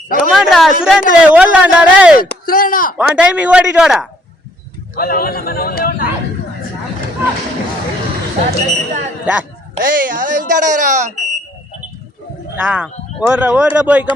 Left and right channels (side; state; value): both; normal; correlation 0.65